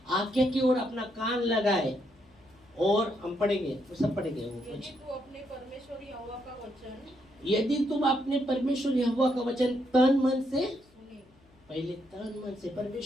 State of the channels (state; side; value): noise; left; hum, 29 dB below the sound